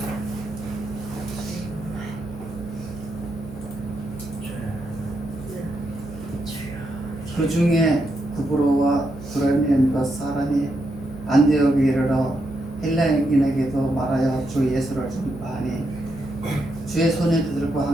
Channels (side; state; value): right; noise; hum, 14 dB below the sound